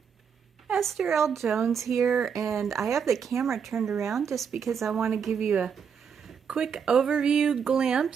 Esther L. Jones here, and I have the camera turned around just because I want to give you a quick overview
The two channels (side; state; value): left; quieter; 6.9 dB